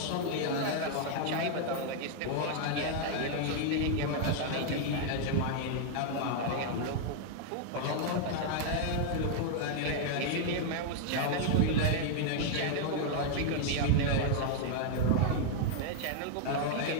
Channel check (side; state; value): both; different; correlation 0.00